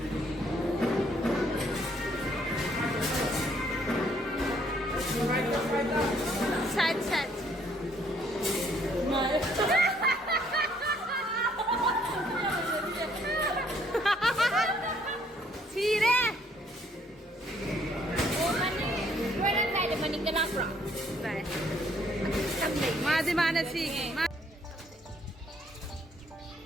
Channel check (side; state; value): both; normal; correlation 0.66